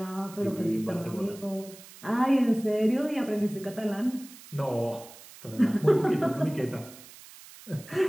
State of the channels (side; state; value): right; noise; hiss, 19 dB below the sound